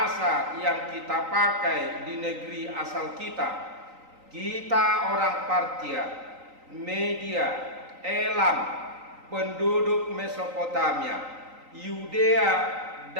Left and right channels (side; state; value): left; late; 3.9 ms